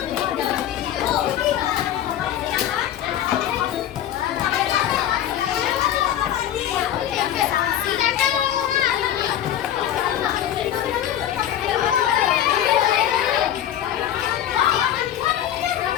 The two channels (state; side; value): quieter; right; 11.1 dB